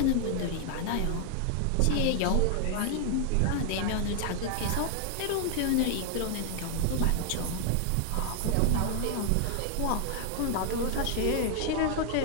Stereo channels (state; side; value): different; both; correlation 0.00